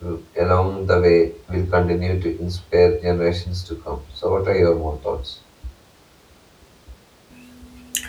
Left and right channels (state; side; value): identical; both; correlation 1.00